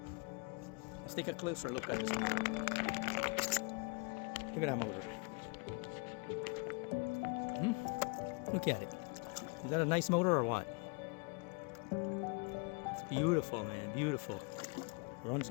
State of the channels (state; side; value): quieter; right; 31.8 dB